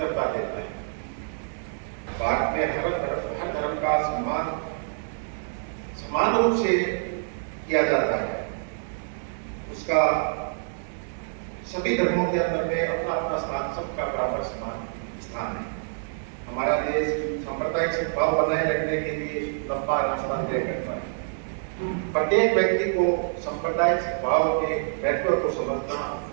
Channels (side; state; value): left; silent; 60 dB below the other